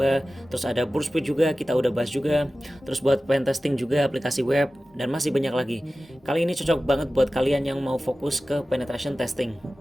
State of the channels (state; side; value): normal; both; correlation 0.96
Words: Terus ada Burstfeed juga, kita udah bahas juga. Terus buat pen testing juga, aplikasi web, dan masih banyak lagi. Kali ini cocok banget buat kalian yang mau fokus ke penetration testing.